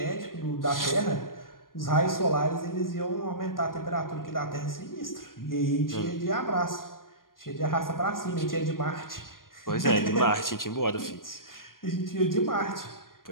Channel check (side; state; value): right; late; 0.91 ms